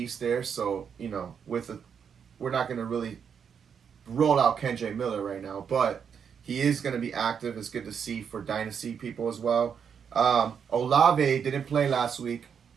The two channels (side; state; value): left; quieter; 7.2 dB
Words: there, so, we're not going to really roll out Kendre Miller right now, but he is going to be active. It's good to see for dynasty people as well. Olave didn't play last week.